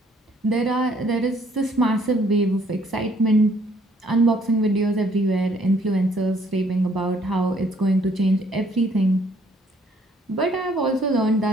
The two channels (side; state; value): both; normal; correlation 0.64